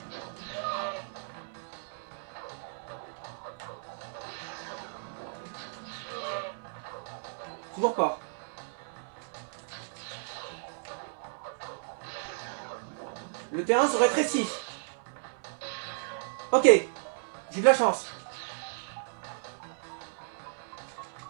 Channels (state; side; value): silent; left; 55 dB below the other